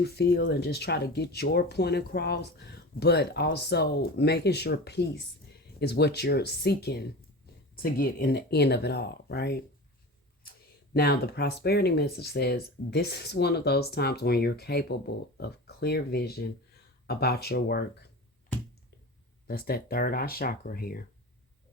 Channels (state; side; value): normal; both; correlation 0.31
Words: feel and just try to get your point across. But also making sure peace is what you're seeking to get in the end of it all, right? Now, the prosperity message says this is one of those times when you're capable of clear vision about your work. That's that third eye chakra here.